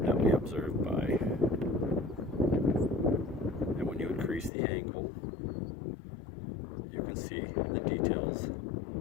we observe by. And when you increase the angle, you can see the details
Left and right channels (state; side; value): drops out; right; at 4.5 s